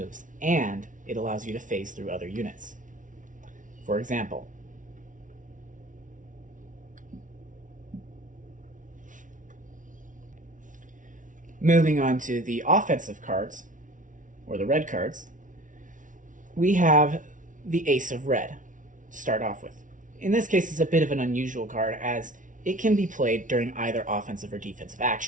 and it allows you to phase through other units. For example, moving on to the offensive cards, or the red cards, we have the Ace of Red to start off with. In this case, it's a bit of an unusual card as it can be played during either offensive or defensive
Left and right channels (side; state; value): left; late; 0.37 ms